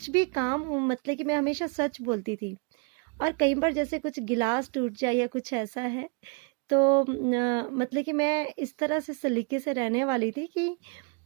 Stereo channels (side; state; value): left; quieter; 35.1 dB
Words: भी काम हो, मतलब कि मैं हमेशा सच बोलती थी। और कई बार जैसे कुछ गिलास टूट जाए या कुछ ऐसा है तो मतलब कि मैं इस तरह से सलीके से रहने वाली थी कि